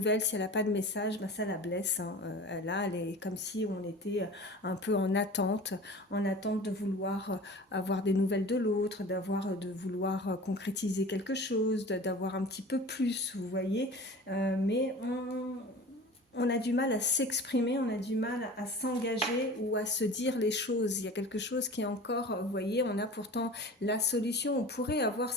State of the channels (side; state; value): both; normal; correlation 0.38